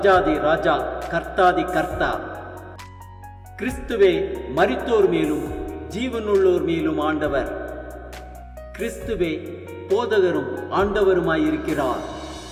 ராஜா, கர்த்தாதி கர்த்தா. கிறிஸ்துவே மரித்தோர் மேலும் ஜீவனுள்ளோர் மேலும் ஆண்டவர். கிறிஸ்துவே போதகரும் ஆண்டவருமாயிருக்கிறார்.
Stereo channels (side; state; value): both; identical; correlation 1.00